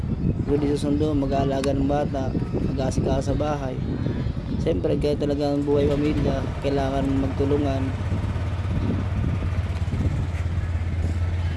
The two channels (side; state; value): both; identical; correlation 1.00